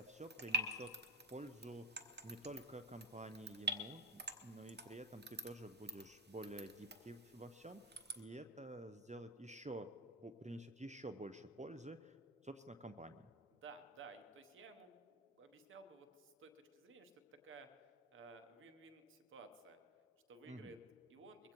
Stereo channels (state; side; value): normal; both; correlation 0.14